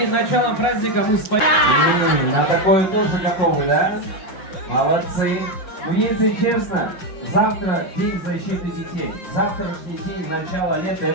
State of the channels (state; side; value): late; right; 5.6 ms